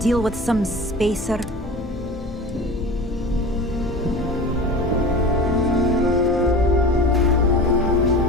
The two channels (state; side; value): normal; both; correlation 0.35